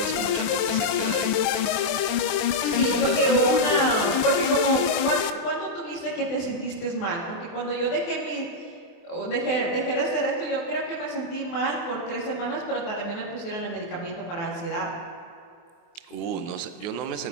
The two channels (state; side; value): late; right; 24 ms